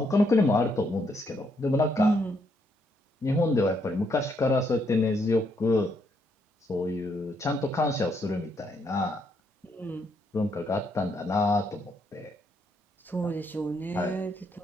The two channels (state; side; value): normal; both; correlation 0.74